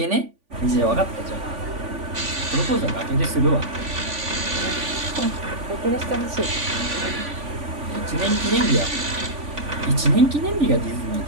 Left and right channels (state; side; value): late; left; 3.5 ms